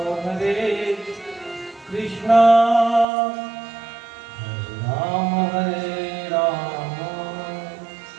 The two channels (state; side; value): drops out; left; at 3.1 s